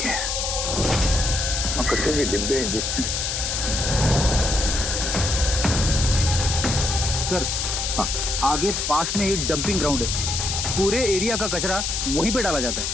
है। और कचरे के डिब्बे देखते हैं। सर हाँ, आगे पास में ही डंपिंग ग्राउंड है, पूरे एरिया का कचरा वहीं पे डाला जाता है।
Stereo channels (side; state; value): left; noise; hiss, 1 dB below the sound